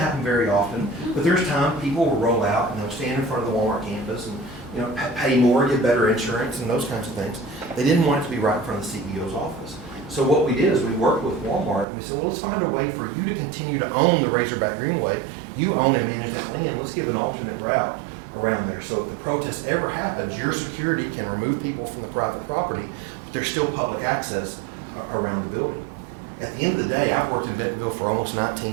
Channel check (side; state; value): left; drops out; at 11.9 s